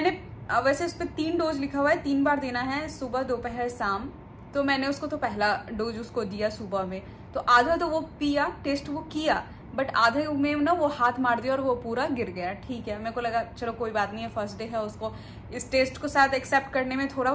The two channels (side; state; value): both; identical; correlation 1.00